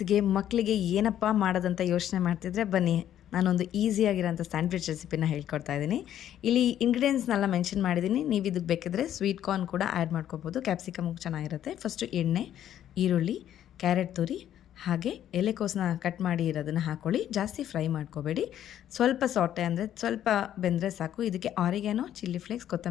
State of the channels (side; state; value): right; quieter; 11.0 dB